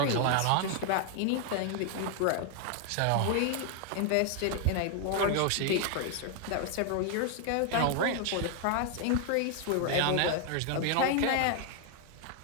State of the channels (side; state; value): both; different; correlation 0.00